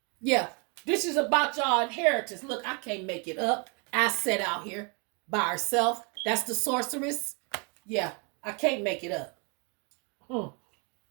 Yeah, this is about y'all inheritance. Look, I can't make it up. I set out here by herself. That's the sorceress. Yeah, I can't make it up.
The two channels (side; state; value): left; quieter; 34.0 dB